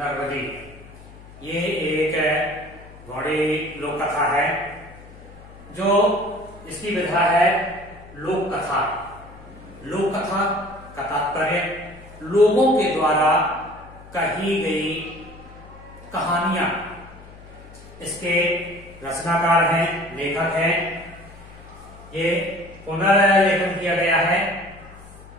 ये एक बड़ी लोक कथा है। जो इसकी विधा है लोक कथा। लोक कथा का तात्पर्य लोगों के द्वारा कही गई कहानियां। इसके रचनाकार हैं, लेखक हैं। ये पुनर्लेखन किया गया है।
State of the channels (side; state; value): left; noise; hum, 19 dB below the sound